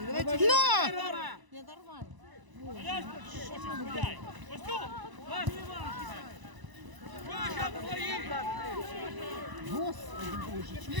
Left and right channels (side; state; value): left; late; 1.0 ms